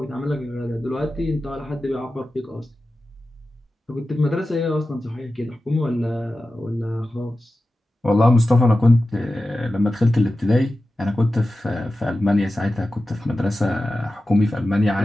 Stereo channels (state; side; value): normal; both; correlation 0.94